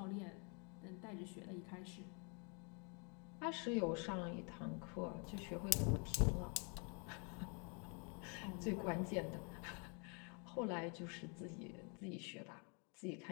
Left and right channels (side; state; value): right; quieter; 36.0 dB